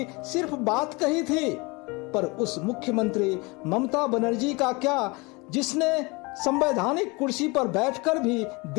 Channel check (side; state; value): right; quieter; 26.4 dB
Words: सिर्फ बात कही थी। पर उस मुख्यमंत्री ममता बनर्जी का क्या, जिसने संवैधानिक कुर्सी पर बैठकर भी